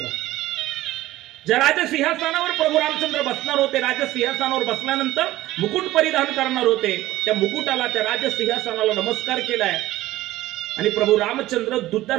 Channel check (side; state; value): left; quieter; 16.1 dB